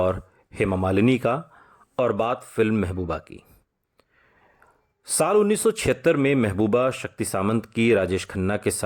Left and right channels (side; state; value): both; identical; correlation 1.00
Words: हेमा मालिनी का और बात फिल्म महबूबा की। साल 1976 में महबूबा शक्ति सामंत की राजेश खन्ना के